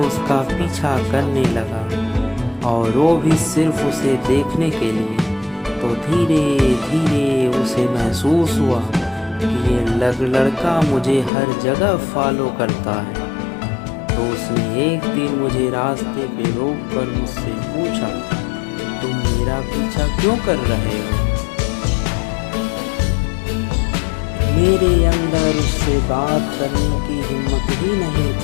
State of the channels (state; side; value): drops out; right; at 11.3 s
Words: पीछा करने लगा, और वो भी सिर्फ उसे देखने के लिए। तो धीरे धीरे उसे महसूस हुआ कि ये लड़का मुझे हर जगह फॉलो करता है। तो उसने एक दिन मुझे रास्ते पे रोक कर मुझसे पूछा, तुम मेरा पीछा क्यों कर रहे हो? मेरे अंदर उससे बात करने की हिम्मत ही नहीं